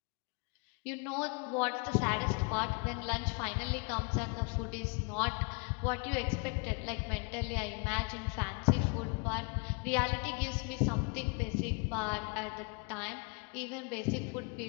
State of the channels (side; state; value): right; quieter; 33.3 dB